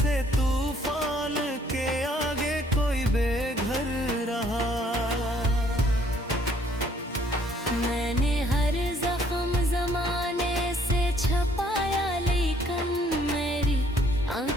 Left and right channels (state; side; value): normal; both; correlation 0.63